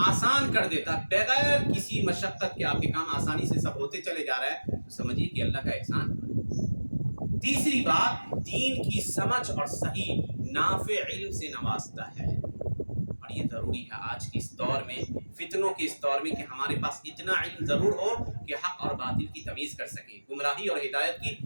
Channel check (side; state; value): both; inverted; correlation -1.00